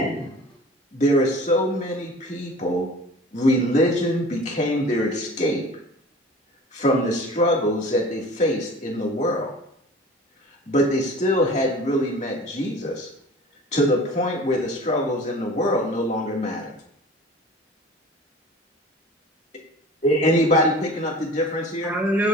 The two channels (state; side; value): normal; both; correlation 0.42